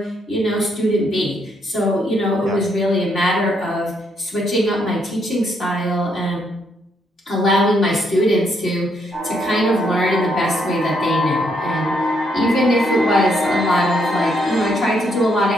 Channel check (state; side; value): normal; both; correlation 0.74